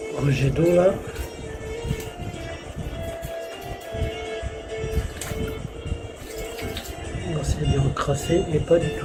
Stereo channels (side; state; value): both; identical; correlation 1.00